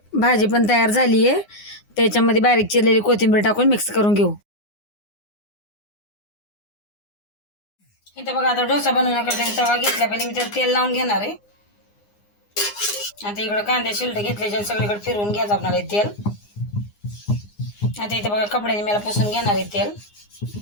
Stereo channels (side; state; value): right; late; 9.7 ms